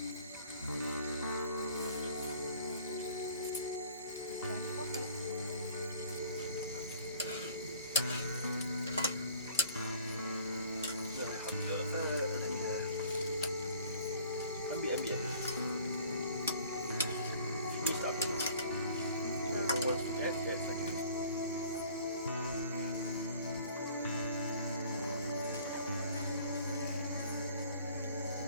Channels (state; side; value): inverted; both; correlation -0.51